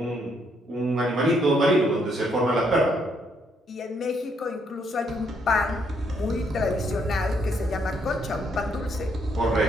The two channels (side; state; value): both; normal; correlation 0.72